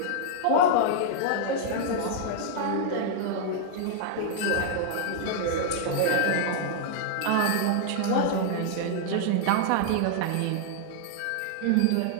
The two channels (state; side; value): different; both; correlation -0.01